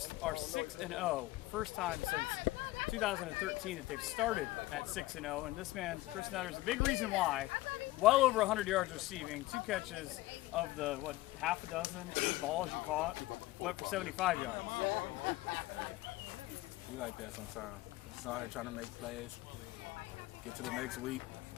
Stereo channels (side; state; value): right; quieter; 18.2 dB